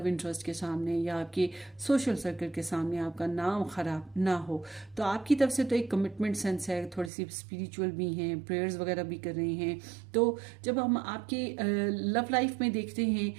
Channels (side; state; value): left; drops out; at 7.1 s